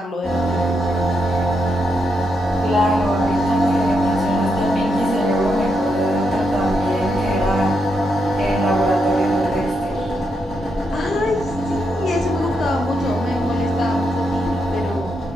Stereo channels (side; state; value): both; normal; correlation 0.82